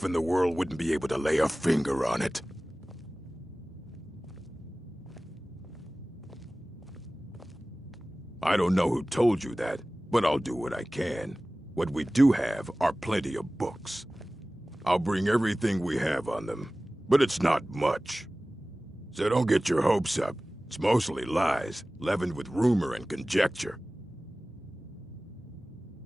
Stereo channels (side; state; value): both; normal; correlation 0.97